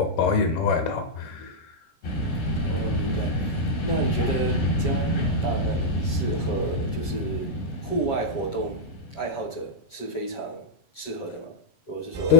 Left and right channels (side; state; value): right; late; 7.3 ms